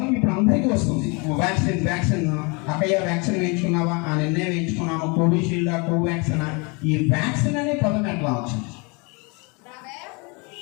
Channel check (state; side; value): quieter; right; 30.4 dB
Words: ఇప్పుడు అందరికీ వస్తుంది. వ్యాక్సిన్ అక్కయ్య వ్యాక్సిన్ వేయించుకున్నావా, ఆ నిన్నే వేయించుకున్నాము, కోవిషీల్డా, కోవాక్సిన్. ఈ వ్యాక్సిన్ అనే పదం ఎట్లా వచ్చింది?